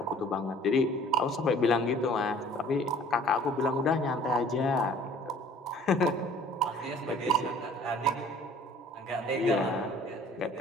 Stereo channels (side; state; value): both; normal; correlation 0.52